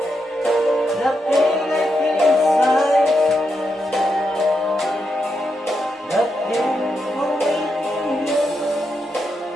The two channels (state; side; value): normal; both; correlation 0.84